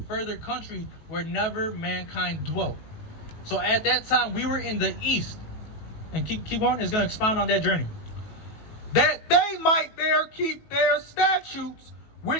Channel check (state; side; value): late; right; 19 ms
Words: further country where never mankind dwelt. So at that time, we were in the east. And keep on, it's going to expound on that journey. That they might there keep their statutes,